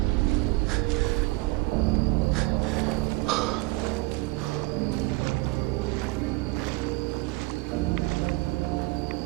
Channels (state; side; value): quieter; left; 23.2 dB